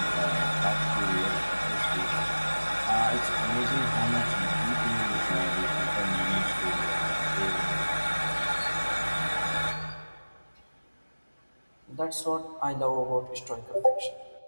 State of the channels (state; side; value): inverted; both; correlation -1.00